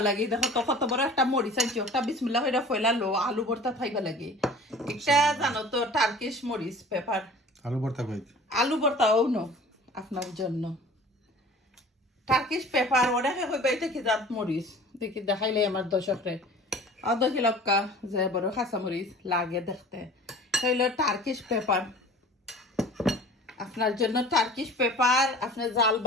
লাগে দেখো তো কত বড় একটা মরিচ আনছি একটা বিসমিল্লাহ হইরা ফয়লা লো আলু ভর্তা খাইবা লাগে একটা জানো তো টার্কিশ মরিচ পেপার আলু ভর্তা কই আলু ভর্তাও নো আপনার জন্য টার্কিশ পেপার ওটা হইবা এটা কি জাত মরিচ দেখি দেখাইলে আমার দর্শকরে আধা কিলোকা যে বড় খাসা মরিচ লাগে দেখতে হইলো টার্কিশ পেপার আপনার জন্য টার্কিশ পেপার আপনার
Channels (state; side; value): normal; both; correlation 0.44